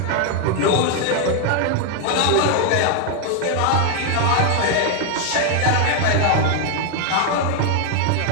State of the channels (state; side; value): different; both; correlation 0.00